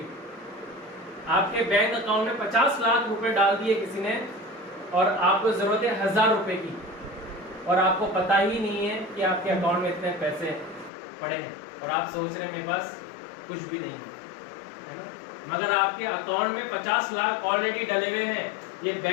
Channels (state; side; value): drops out; right; at 10.9 s